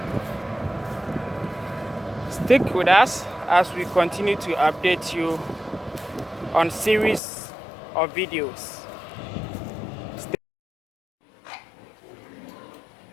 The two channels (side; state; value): right; drops out; at 7.2 s